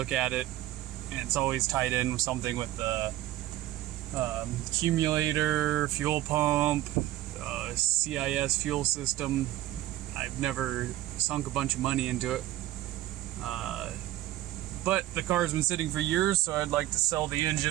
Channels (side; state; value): left; quieter; 14.9 dB